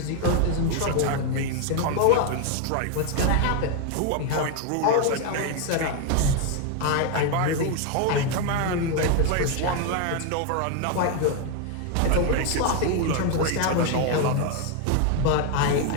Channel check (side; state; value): both; different; correlation 0.01